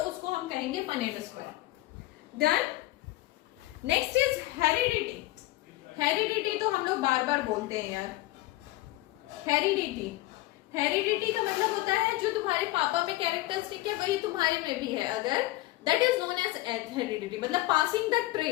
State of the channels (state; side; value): quieter; right; 18.2 dB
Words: उसको हम कहेंगे Punnett square. Done. Next is heredity. Heredity तो हम लोग बार बार बोलते हैं यार, हेरिडिटी, हेरिडिटी का मतलब होता है जो तुम्हारे पापा में कैरेक्टरिस्टिक है वही तुम्हारे में भी है, अगर that is known as heredity, मतलब passing the